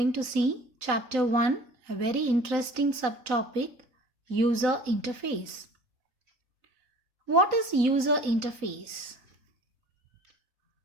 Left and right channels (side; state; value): left; late; 3.9 ms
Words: to see Chapter 1, a very interesting subtopic, User Interface. What is user interface?